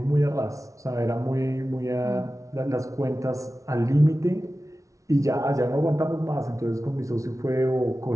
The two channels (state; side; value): late; left; 0.16 ms